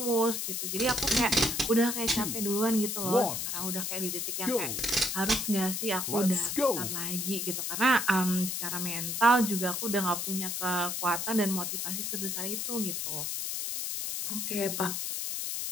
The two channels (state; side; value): noise; left; hiss, 2 dB below the sound